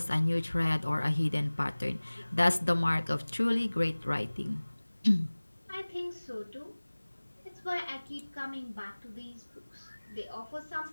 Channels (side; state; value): both; inverted; correlation -1.00